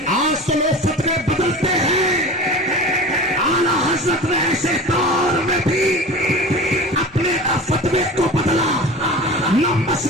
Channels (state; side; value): normal; both; correlation 0.35